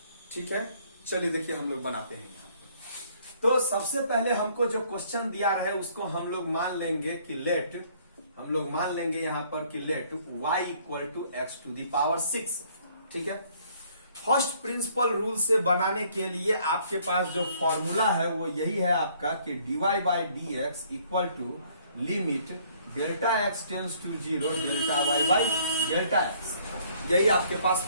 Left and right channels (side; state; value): both; inverted; correlation -0.62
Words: ठीक है, चलिए देखिए हम लोग बनाते हैं यहाँ। तो सबसे पहले हमको जो क्वेश्चन दिया रहे उसको हम लोग मान लेंगे कि यहां पर कि let y equal to x to the power 6। ठीक है, फर्स्ट प्रिंसिपल रूल से बनाने के लिए आपके पास जो फॉर्मूला है वो यही है आपका कि dy by D x equal to limit delta x tends to 0 delta y by delta x, यही आपके पास